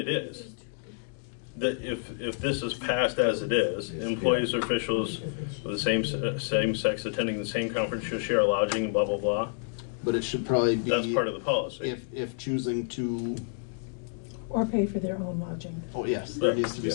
is. That if this is passed as it is, employees or officials of the same sex attending the same conference shall share lodging and blah, blah, blah. But it should probably be. That's part of the policy. If choosing to Or pay for their own lodging. Oh, yes, there needs to be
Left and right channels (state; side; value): silent; right; digital silence